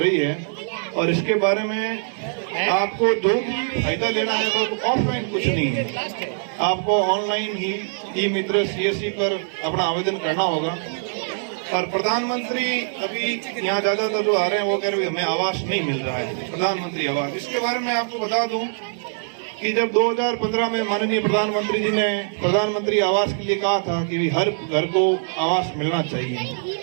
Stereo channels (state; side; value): silent; left; 64 dB below the other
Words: है और इसके बारे में आपको जो भी फायदा लेना है वो ऑफलाइन कुछ नहीं है, आपको ऑनलाइन ही ई मित्र CSC पर अपना आवेदन करना होगा। और प्रधानमंत्री अभी यहाँ ज्यादातर जो आ रहे हैं वो कह रहे हैं हमें आवास नहीं मिल रहा है, प्रधानमंत्री आवास। इसके बारे में आपको बता दूं कि जब 2015 में माननीय प्रधानमंत्री जी ने प्रधानमंत्री आवास के लिए कहा था कि हर घर को आवास मिलना चाहिए,